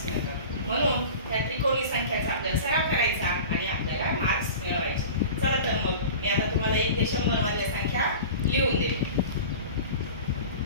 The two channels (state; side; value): inverted; both; correlation -0.36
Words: मिळतात. म्हणून त्या त्रिकोणी संख्याचा आपल्याला सराव करायचा आणि आपल्याला मार्क्स मिळवायचे. चला तर मग मी आता तुम्हाला 1 ते 100 मधल्या संख्या लिहून देते.